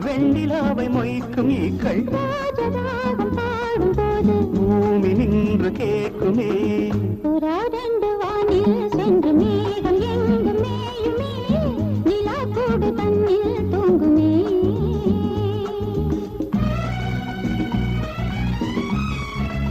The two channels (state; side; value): identical; both; correlation 1.00